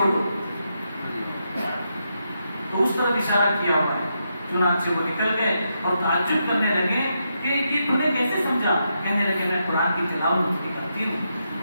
دو، تو اس طرف اشارہ کیا ہوا ہے۔ چنانچہ وہ نکل گئے اور تعجب کرنے لگے کہ یہ تم نے کیسے سمجھا، کہنے لگے میں قرآن کی تلاوت کرتی ہوں،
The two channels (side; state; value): both; inverted; correlation -0.83